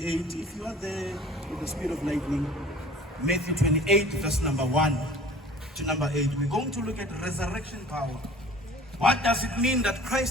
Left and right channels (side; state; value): both; normal; correlation 0.46